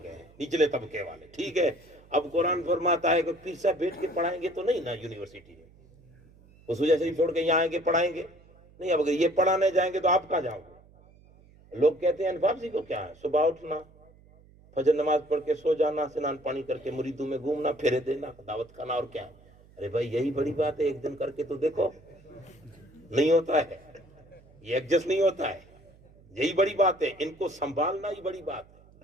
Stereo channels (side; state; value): right; noise; hum, 26 dB below the sound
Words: ہیں نچلے طبقے والے, ٹھیک ہے. اب قرآن فرماتا ہے کہ پیر صاحب بیٹھ کے پڑھائیں گے تو نہیں نا یونیورسٹی میں, وہ سوجا شریف چھوڑ کے یہاں آئیں گے پڑھائیں گے نہیں. اب اگر یہ پڑھانے جائیں گے تو آپ کہاں جاؤ گے؟ لوگ کہتے ہیں انفاف جی کو کیا ہے, صبح اٹھنا, فجر نماز پڑھ کے سو جانا, سنان پانی کر کے مریدوں میں گھومنا, پھیرے دینا, دعوت کھانا, اور کیا. ارے بھائی یہی بڑی بات ہے, ایک دن کر کے تو دیکھو. نہیں ہوتا ہے, یہ ایڈجسٹ نہیں ہوتا ہے, یہی بڑی بات ہے. ان کو سنبھالنا ہی بڑی بات